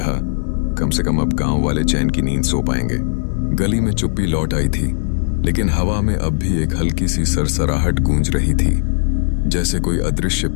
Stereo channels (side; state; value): right; silent; digital silence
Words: कम से कम अब गांव वाले चैन की नींद सो पाएंगे। गली में चुप्पी लौट आई थी, लेकिन हवा में अब भी एक हल्की सी सरसराहट गूंज रही थी, जैसे कोई अदृश्य